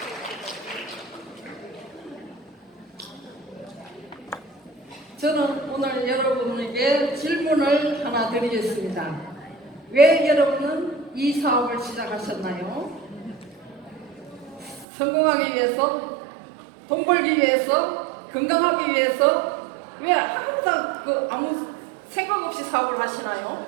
저는 오늘 여러분에게 질문을 하나 드리겠습니다. 왜 여러분은 이 사업을 시작하셨나요? 성공하기 위해서, 돈 벌기 위해서, 건강하기 위해서, 왜 항상 아무 생각 없이 사업을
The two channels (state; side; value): drops out; left; at 14.9 s